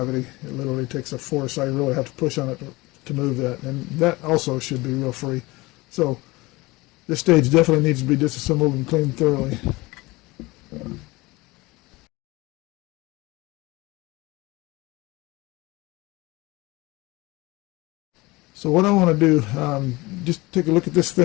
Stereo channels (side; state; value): right; quieter; 22.0 dB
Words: It literally takes a force. I really have to push on it to move that, and that also should be real free. So this stage definitely needs to be disassembled and cleaned thoroughly. So what I want to do, just take a look at this